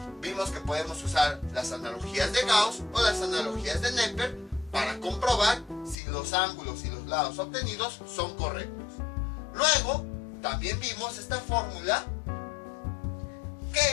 Vimos que podemos usar las analogías de Gauss o las analogías de Neper para comprobar si los ángulos y los lados obtenidos son correctos. Luego, también vimos esta fórmula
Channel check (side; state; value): right; drops out; at 6.0 s